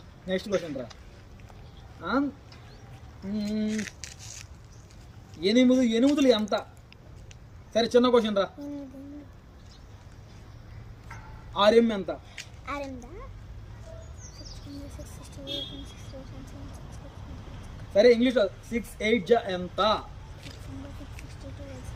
నెక్స్ట్ క్వశ్చన్ రా ఎనిమిదిలు ఎంత సరే చిన్న క్వశ్చన్ రా ఆర్ఎం ఎంత సరే ఇంగ్లీష్ 6 8 ఎంత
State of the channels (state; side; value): identical; both; correlation 1.00